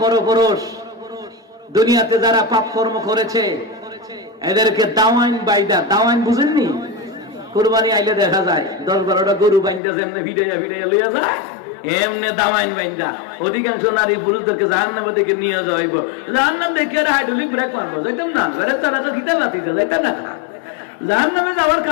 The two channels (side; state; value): right; drops out; at 9.8 s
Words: পরপুরুষ দুনিয়াতে যারা পাপ কর্ম করেছে, এদেরকে দাওয়াইন বাইদা, দাওয়াইন বুঝেননি? কুরবানি আইলে দেখা যায় 10-12টা গরু বাইন্দা যেমনে ভিড়াইয়া লইয়া যায়, এমনে দাওয়াইন বাইন্দা অধিকাংশ নারী পুরুষদেরকে জাহান্নামের দিকে নিয়ে যাওয়া হইব। জাহান্নাম দেখে হাইড্রোলিক ব্রেক মারবো, যাইতাম না, ঘরে তারা তো দিতে পারতি, যাইতাম না। জাহান্নামে যাওয়ার